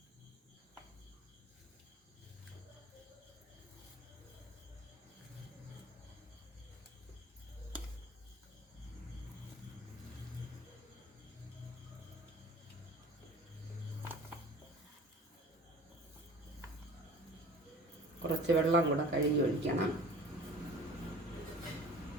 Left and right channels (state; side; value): normal; both; correlation 0.43